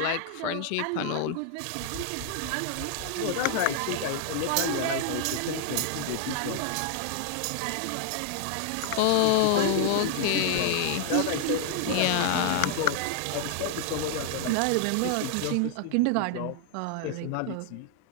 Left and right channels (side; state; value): both; different; correlation 0.00